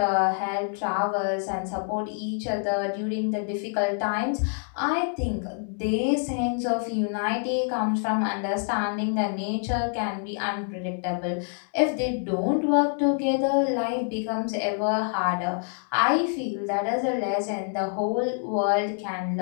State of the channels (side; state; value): right; silent; 61 dB below the other